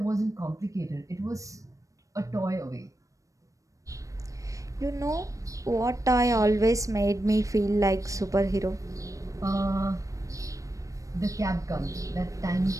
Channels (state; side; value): late; left; 0.16 ms